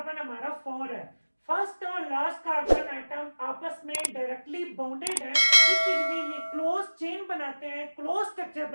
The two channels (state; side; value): inverted; both; correlation -1.00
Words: हमारा 4 है। फर्स्ट और लास्ट कार्बन एटम आपस में डायरेक्टली बॉन्डेड है, इसलिए ये क्लोज चेन बनाते हैं, क्लोज स्ट्रक्चर